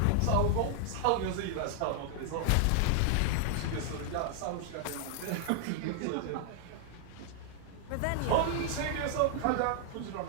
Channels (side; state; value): both; different; correlation 0.00